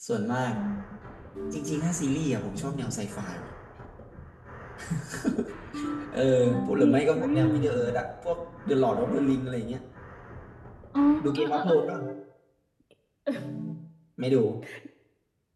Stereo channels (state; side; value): identical; both; correlation 1.00